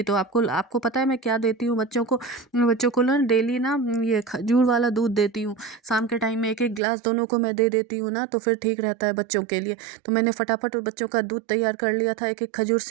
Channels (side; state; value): left; drops out; at 6.8 s